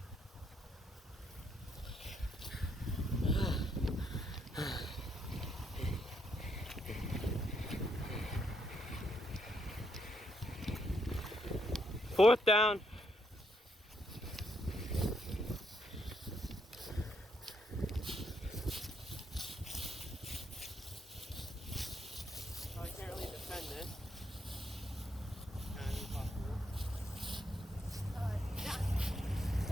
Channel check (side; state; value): both; normal; correlation 0.76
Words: Fourth down. I can't really defend this. Kind of impossible. Down.